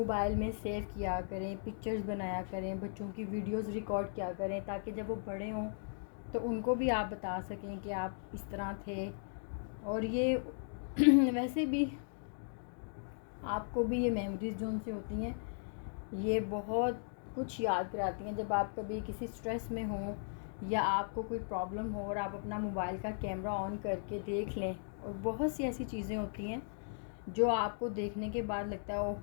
में सेव किया करें, पिक्चर्स बनाया करें, बच्चों की वीडियोस रिकॉर्ड किया करें, ताकि जब वो बड़े हों तो उनको भी आप बता सकें कि आप इस तरह थे। और ये वैसे भी आपको भी ये मेमोरीज़ जो उनसे होती हैं ये बहुत कुछ याद कराती हैं। जब आप कभी किसी स्ट्रेस में हो या आपको कोई प्रॉब्लम हो और आप अपना मोबाइल का कैमरा ऑन करके देख लें, और बहुत सी ऐसी चीज़ें होती हैं जो आपको देखने के बाद लगता है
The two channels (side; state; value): right; silent; digital silence